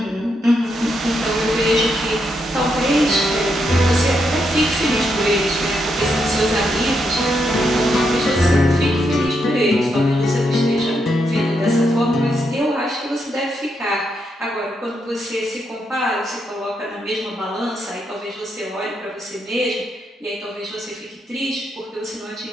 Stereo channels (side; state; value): both; normal; correlation 0.80